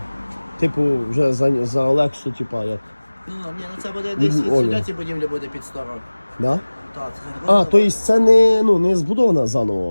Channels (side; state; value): both; inverted; correlation -1.00